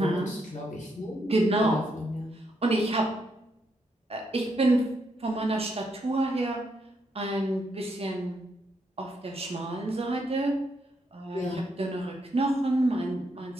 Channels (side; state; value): both; normal; correlation 0.78